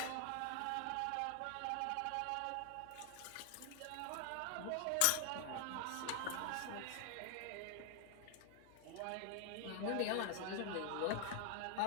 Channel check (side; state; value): both; different; correlation 0.00